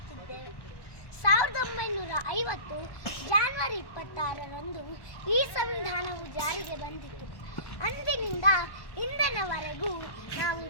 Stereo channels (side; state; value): right; late; 1.1 ms